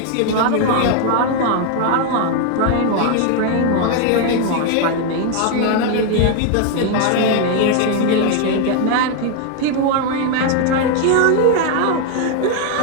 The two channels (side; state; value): both; different; correlation 0.00